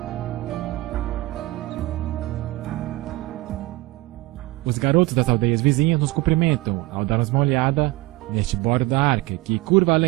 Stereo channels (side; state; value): left; quieter; 20.0 dB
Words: Os garotos das aldeias vizinhas nos cumprimentam ao darmos uma olhada neste bordo da arca, que curva